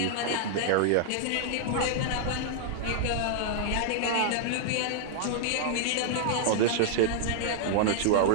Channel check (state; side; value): different; both; correlation -0.01